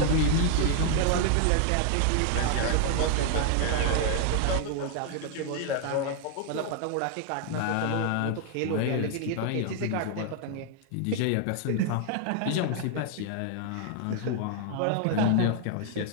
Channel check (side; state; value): both; different; correlation 0.00